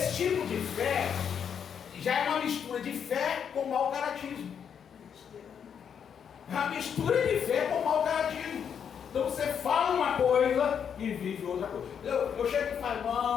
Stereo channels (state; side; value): quieter; right; 7.7 dB